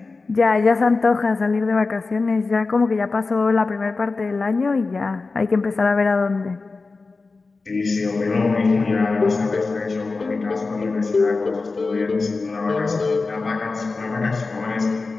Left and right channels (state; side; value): quieter; right; 3.9 dB